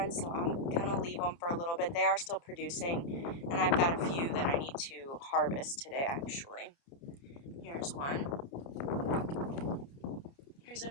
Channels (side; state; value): right; late; 29 ms